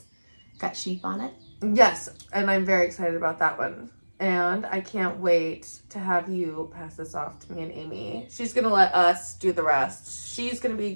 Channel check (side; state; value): both; inverted; correlation -1.00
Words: got sheep on it. Yes, and I'm very excited about that one. And I can't wait to have you pass this off to me and Aimee. She's gonna let us do the rest. She's gonna